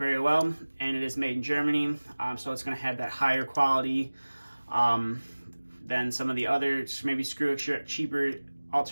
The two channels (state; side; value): inverted; both; correlation -1.00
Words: well, and it is made in Germany, so it's going to have that higher quality than some of the other maybe cheaper